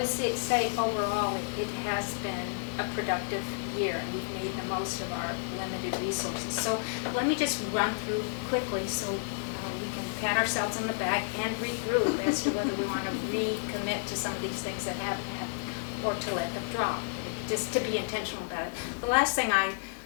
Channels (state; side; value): silent; right; digital silence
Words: say overall, it has been a productive year, and we've made the most of our limited resources. So let me just run through quickly so we can pat ourselves on the back and regroup as to whether we want to recommit to some of these things that haven't happened or to let them drop, just to be intentional about it. The last thing I